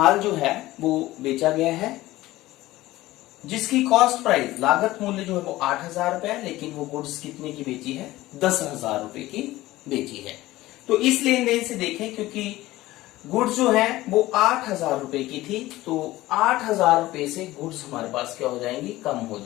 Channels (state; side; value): quieter; right; 17.2 dB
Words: जो है वो बेचा गया है जिसकी कॉस्ट प्राइस, लागत मूल्य जो है वो 8,000 रुपया है, लेकिन वो गुड्स कितने की बेची है? 10,000 रुपए की बेची है। तो इस लेन देन से देखें क्योंकि गुड्स जो है वो 8,000 रुपए की थी तो 8,000 रुपए से गुड्स हमारे पास क्या हो जाएंगी? कम हो